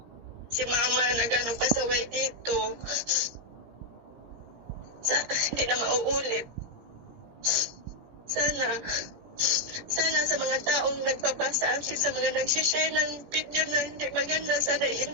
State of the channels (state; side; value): late; left; 18 ms